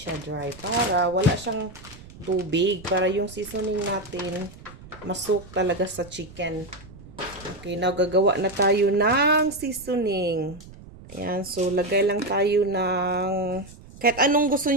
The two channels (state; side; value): noise; right; rumble, 19 dB below the sound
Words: dry. Para wala siyang tubig. Para yung seasoning natin, masuk talaga sa chicken. Okay, now gagawa na tayo ng seasoning. Ayan, so lagay lang tayo ng... Kahit anong gusto